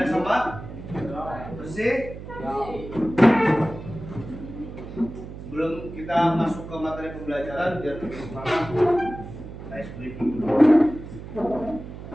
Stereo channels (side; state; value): right; noise; hum, 12 dB below the sound